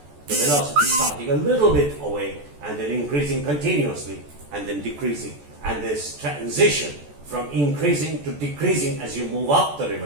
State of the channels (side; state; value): left; late; 14 ms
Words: the velocity starting a little bit away and then increasing continuously and then decreasing. And this transition from increasing to decreasing as you move up the